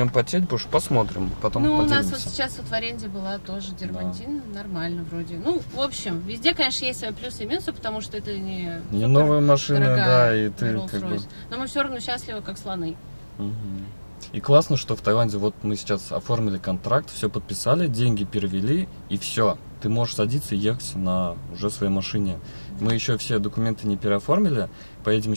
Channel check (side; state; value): both; inverted; correlation -1.00